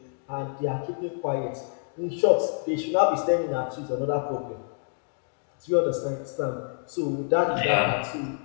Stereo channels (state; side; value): silent; right; 60 dB below the other